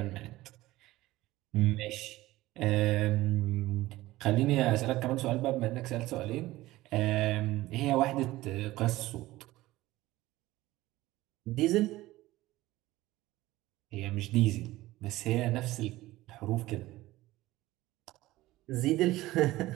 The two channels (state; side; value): quieter; left; 17.4 dB